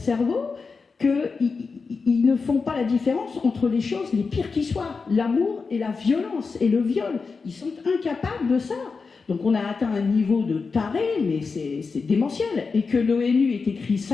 qu'ils ne font pas la différence entre les choses les pires qui soient, l'amour et la violence et le viol. Ils sont incapables de ça. Donc on a atteint un niveau de taré, mais c'est démentiel. Et que l'ONU ait écrit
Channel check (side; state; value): right; quieter; 4.7 dB